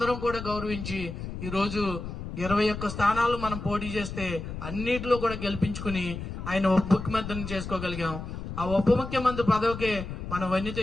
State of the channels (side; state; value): left; noise; rumble, 8 dB below the sound